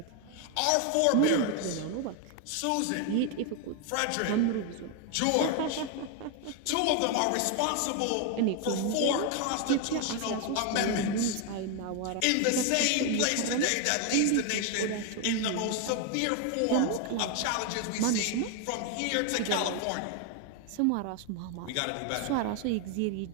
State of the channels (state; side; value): different; both; correlation 0.01